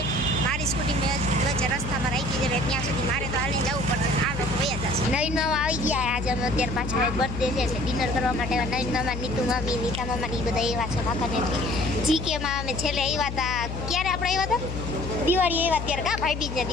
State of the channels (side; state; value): left; noise; hum, 6 dB below the sound